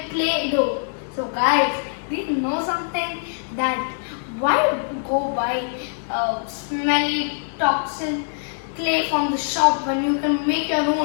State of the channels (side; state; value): right; silent; 63 dB below the other